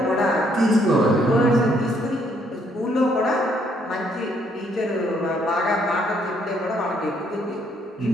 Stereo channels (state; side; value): normal; both; correlation 0.69